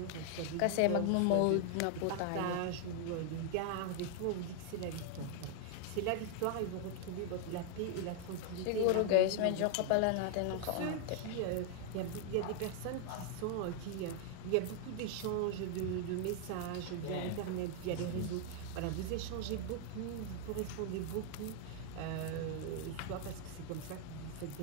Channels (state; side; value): different; both; correlation 0.00